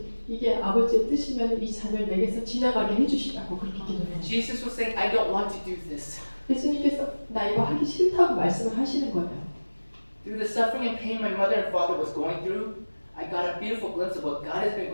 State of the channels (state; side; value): inverted; both; correlation -1.00